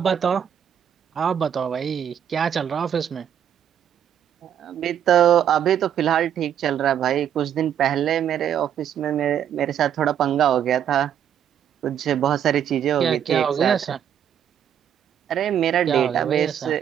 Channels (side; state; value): left; quieter; 9.3 dB